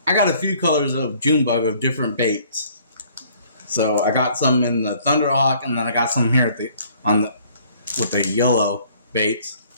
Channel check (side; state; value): both; inverted; correlation -0.59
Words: I got a few colors of June bug of different baits. So I got some in the Thunderhawk, and then I got some here with the yellow baits.